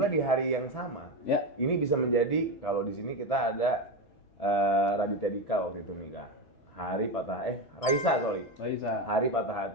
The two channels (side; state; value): right; late; 6.1 ms